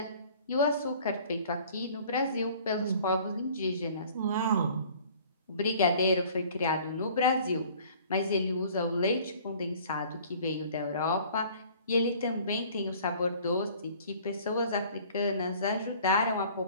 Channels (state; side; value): inverted; both; correlation -0.51